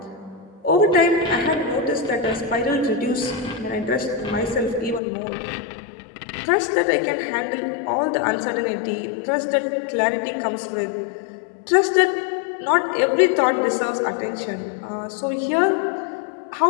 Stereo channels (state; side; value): drops out; right; at 5.0 s